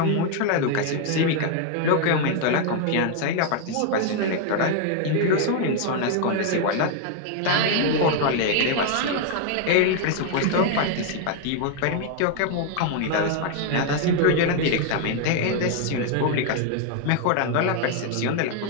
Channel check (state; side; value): different; both; correlation 0.01